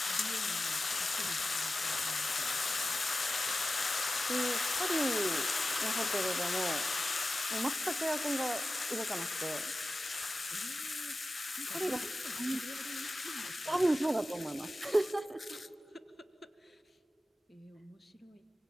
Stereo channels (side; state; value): both; normal; correlation 0.94